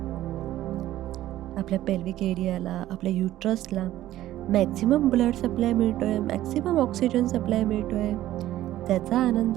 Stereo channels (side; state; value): left; quieter; 14.2 dB